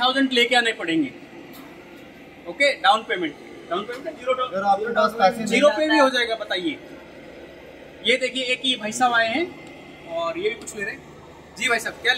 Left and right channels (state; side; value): identical; both; correlation 1.00